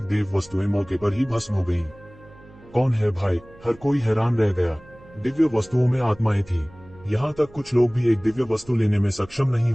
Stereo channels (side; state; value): right; noise; hum, 23 dB below the sound